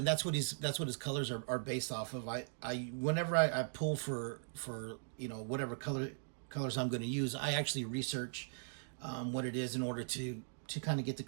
that's what his colors are based off of. Whenever I pull for whatever colors I'm going to use, I actually research what it is in order to kind of get the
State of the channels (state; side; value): silent; left; digital silence